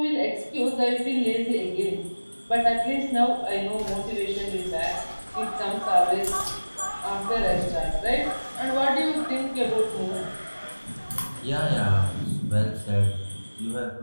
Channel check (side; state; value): both; inverted; correlation -1.00